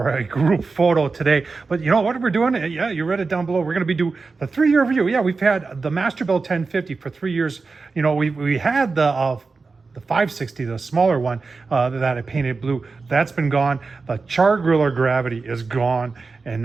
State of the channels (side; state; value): left; quieter; 4.2 dB